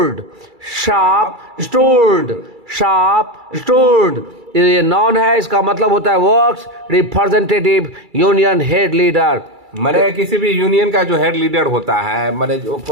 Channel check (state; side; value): late; left; 2.3 ms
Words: sharp stood, sharp stood. ये नॉन है, इसका मतलब होता है works representative union head leader. मैंने किसी भी यूनियन का जो हेड लीडर होता है, मैंने जो